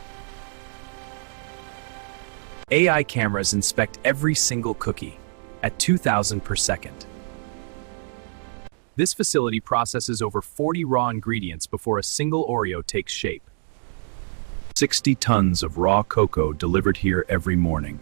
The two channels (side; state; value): left; silent; digital silence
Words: AI cameras inspect every single cookie at 2,000 per second. This facility processes over 40 raw ingredients before a single Oreo takes shape. 60 tons of raw cocoa delivered here every morning.